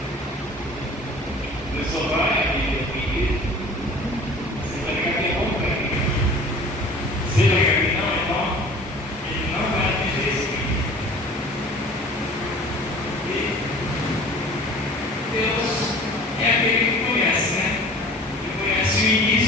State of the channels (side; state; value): both; normal; correlation 0.44